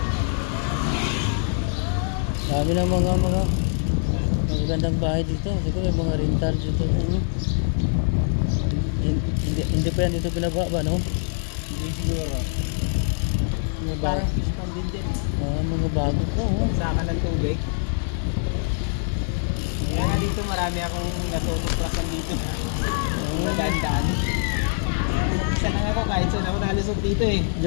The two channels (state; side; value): silent; right; digital silence